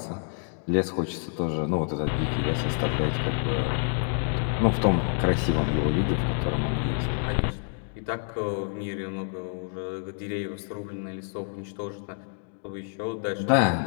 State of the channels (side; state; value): right; silent; 60 dB below the other